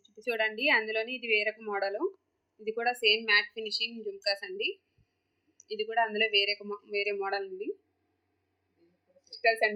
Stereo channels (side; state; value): both; identical; correlation 1.00